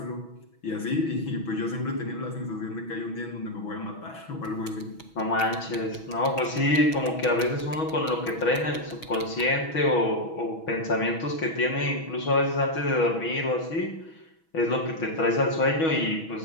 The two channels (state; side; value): late; right; 6.2 ms